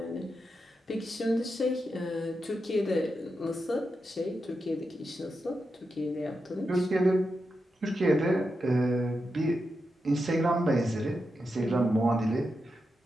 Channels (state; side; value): normal; both; correlation 0.87